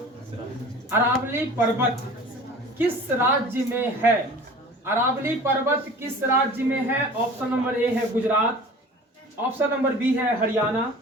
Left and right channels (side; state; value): both; normal; correlation 0.42